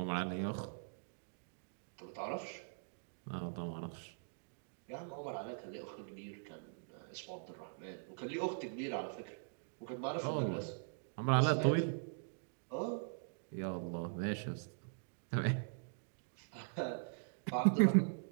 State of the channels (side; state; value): left; silent; digital silence